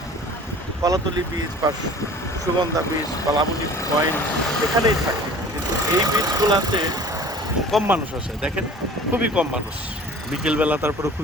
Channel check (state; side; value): normal; both; correlation 0.45